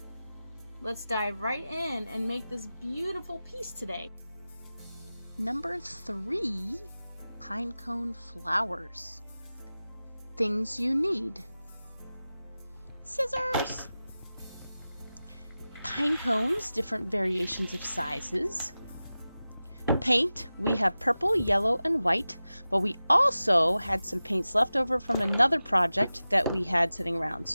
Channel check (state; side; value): inverted; both; correlation -0.95